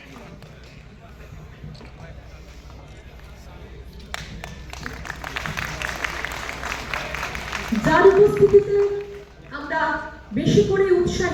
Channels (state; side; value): identical; both; correlation 1.00